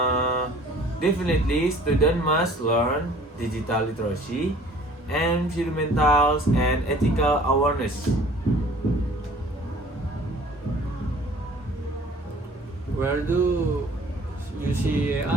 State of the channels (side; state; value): both; normal; correlation 0.51